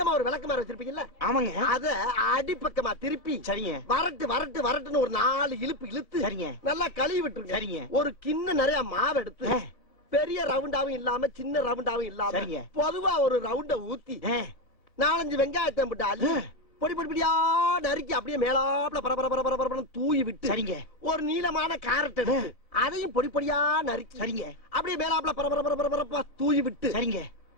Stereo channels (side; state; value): right; late; 1.6 ms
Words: ஒரு விளக்கமாறு வச்சிருப்பீங்கல்ல? ஆமாங்க. அத அடிப்பக்கமா திருப்பி சரிங்க. வரட்டுன்னு ஒரு 4 இழுப்பு இழுத்து சரிங்க. நல்லா கழுவி விட்டுருங்க. சரிங்க. ஒரு கிண்ண நிறைய மாவு எடுத்து பெரிய ரவுண்டாவும் இல்லாம சின்ன ரவுண்டாவும் இல்லாம பொதுவா ஒரு ரவுண்ட ஊத்தி 4-5 வெங்காயத்தை போட்டு அள்ளி பொடி பொடியா நறுக்கி அப்படியே மேலாப்ல பரபர தூவி விட்டு சரிங்க. ஒரு நீளமான கேரட் எடுத்து அதையும் பொடி பொடியா நறுக்கி சரிங்க. அப்படியே மேலாப்ல பரபர தூவி விட்டு சரிங்க.